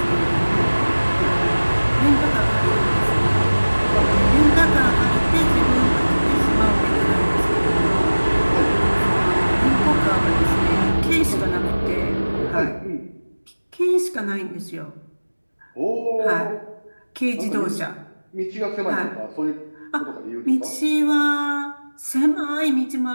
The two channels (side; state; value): both; inverted; correlation -1.00